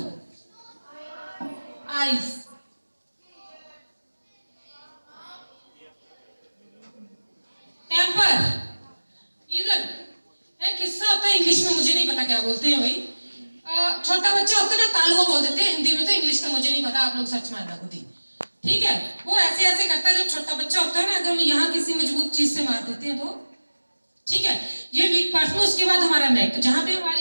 आइज, टेम्पर, इधर एक हिस्सा होता है इंग्लिश में, मुझे नहीं पता क्या बोलते हैं भाई, छोटा बच्चा होता है ना, तालुआ बोल देते हैं हिंदी में, तो इंग्लिश का मुझे नहीं पता, आप लोग सर्च मारना खुद ही, ठीक है। वो ऐसे ऐसे करता है, जब छोटा बच्चा होता है ना, अगर हम यहाँ किसी मजबूत चीज से मार देते हैं तो, ठीक है, ये वीक पार्ट में। उसके बाद हमारा नेक, जहाँ पे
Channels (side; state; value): both; inverted; correlation -1.00